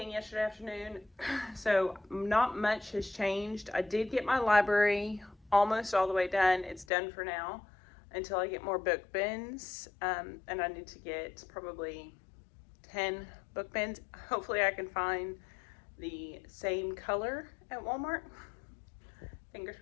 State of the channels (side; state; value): right; drops out; at 6.9 s